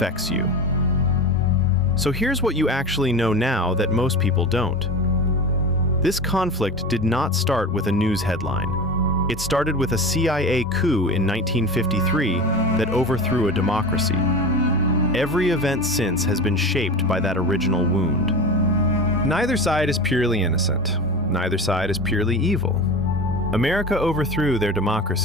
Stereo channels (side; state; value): both; normal; correlation 0.29